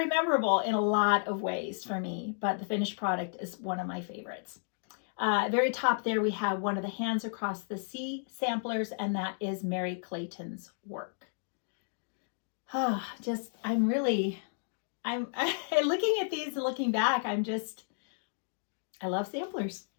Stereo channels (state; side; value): silent; right; digital silence